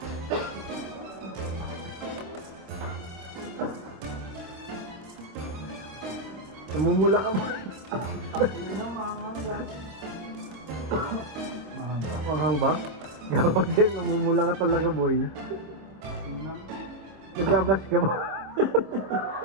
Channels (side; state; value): left; late; 26 ms